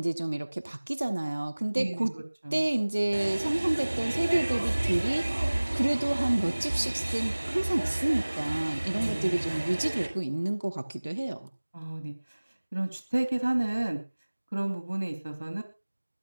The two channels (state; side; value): inverted; both; correlation -1.00